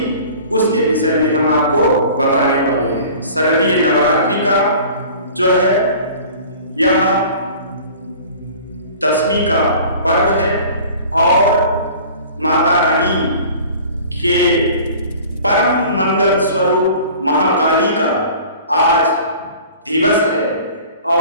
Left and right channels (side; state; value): both; inverted; correlation -0.45